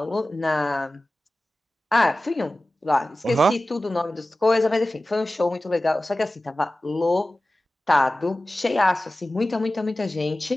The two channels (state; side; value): normal; both; correlation 0.96